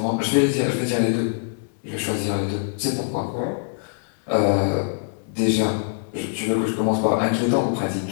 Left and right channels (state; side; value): silent; right; digital silence